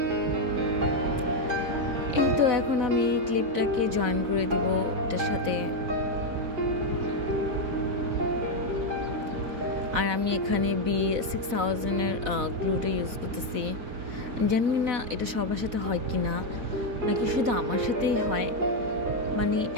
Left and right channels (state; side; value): late; left; 4.0 ms